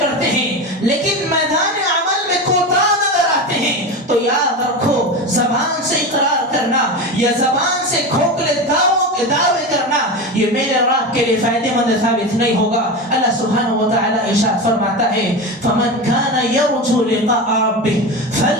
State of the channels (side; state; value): both; normal; correlation 0.22